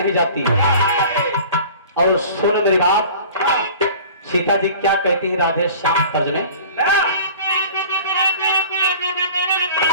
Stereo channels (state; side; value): inverted; both; correlation -0.44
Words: जाती। और सुन मेरी बात, सीता जी क्या कहती है राधे श्याम तर्ज में,